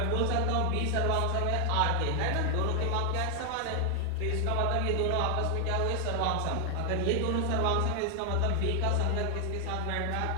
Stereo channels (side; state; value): both; different; correlation 0.00